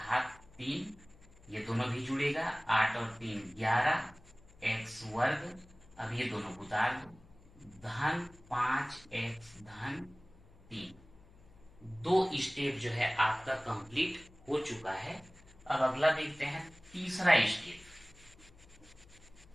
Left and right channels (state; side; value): noise; left; hum, 24 dB below the sound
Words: 3, ये दोनों भी जुड़ेगा, 8 और 3 11, x वर्ग, अब ये दोनों को उतार दो, धन 5x धन 3। 2 स्टेप जो है आपका कंप्लीट हो चुका है। अब अगला देखते हैं तीसरा स्टेप।